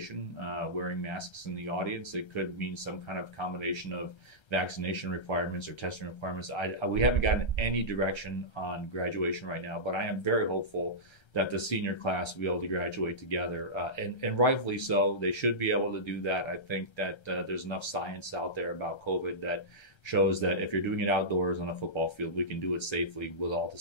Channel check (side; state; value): right; late; 1.3 ms